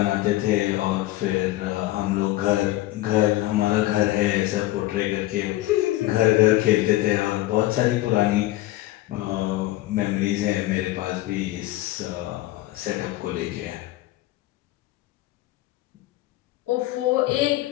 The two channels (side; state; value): right; quieter; 16.7 dB